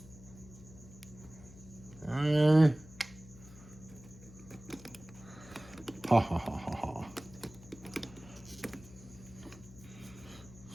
Okay. Ha ha ha ha ha.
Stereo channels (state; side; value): noise; left; hum, 19 dB below the sound